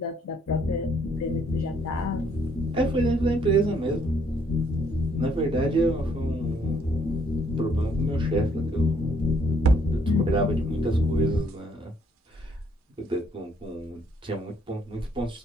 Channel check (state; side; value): normal; both; correlation 0.67